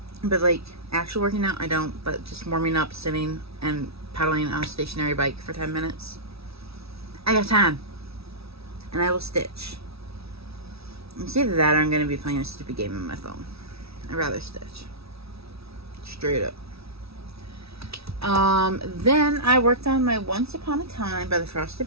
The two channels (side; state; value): left; late; 0.77 ms